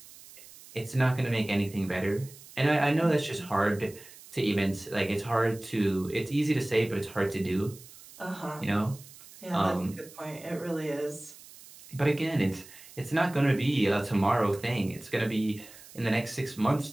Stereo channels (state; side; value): noise; right; hiss, 20 dB below the sound